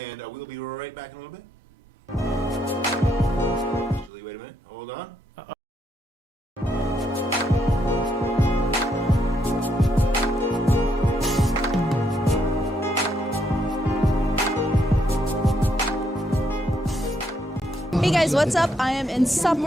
we'll be right back in a little bit. Actually, wait a minute. Hold on. Hey guys, what's up? I am in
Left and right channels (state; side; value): normal; both; correlation 0.75